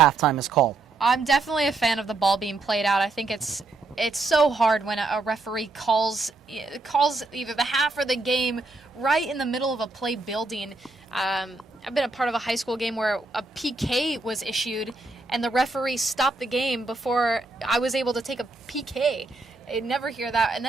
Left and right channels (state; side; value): quieter; left; 3.3 dB